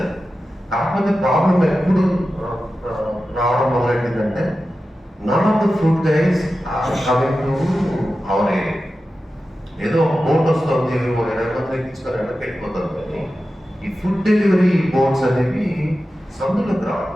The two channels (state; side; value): normal; both; correlation 0.93